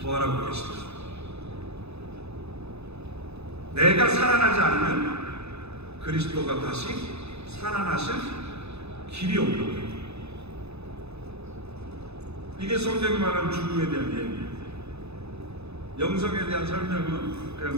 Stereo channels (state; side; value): late; left; 0.79 ms